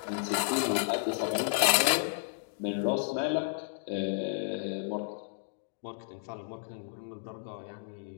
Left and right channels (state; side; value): silent; right; digital silence